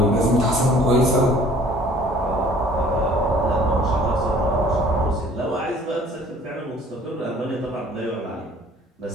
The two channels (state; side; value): normal; both; correlation 0.53